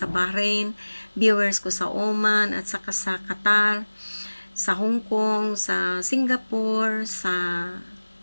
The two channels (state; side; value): inverted; both; correlation -1.00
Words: Bahrain, viewers ko sa Oman, at saka sa Qatar, sa Hong Kong, sa Singapore, sa